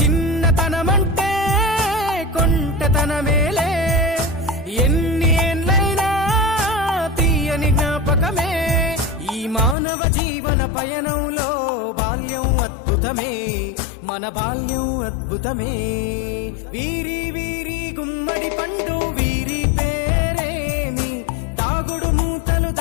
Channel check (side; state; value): right; drops out; at 9.8 s